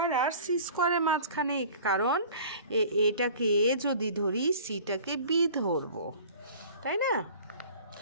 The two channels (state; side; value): inverted; both; correlation -0.45